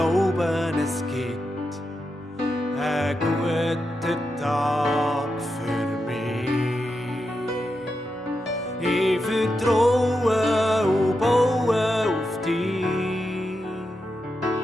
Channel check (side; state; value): both; normal; correlation 0.87